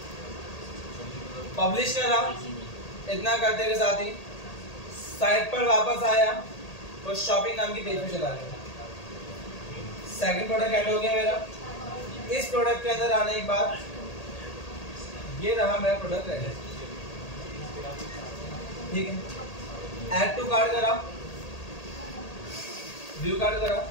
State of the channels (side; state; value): right; late; 1.8 ms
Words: पब्लिश कर रहा हूं। इतना करते के साथ ही साइट पर वापस आया और शॉपिंग नाम की पेज पे चला गया। सेकंड प्रोडक्ट ऐड हो गया मेरा। इस प्रोडक्ट के अंदर आने के बाद ये रहा मेरा प्रोडक्ट रेडी, ठीक है। ऐड टू कार्ड करा, व्यू कार्ड करा,